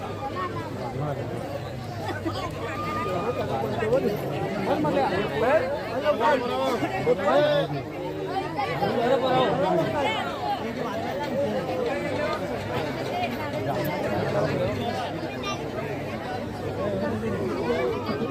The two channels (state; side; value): identical; both; correlation 1.00